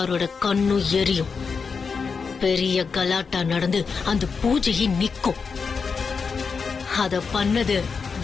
கண்ணும் எரியும். பெரிய கலாட்டா நடந்து அந்த பூஜையை நிக்கும். அத பண்ணது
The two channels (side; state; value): right; quieter; 5.3 dB